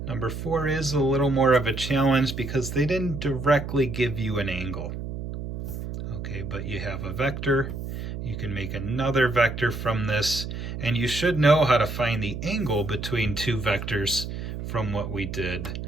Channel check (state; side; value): noise; right; hum, 6 dB below the sound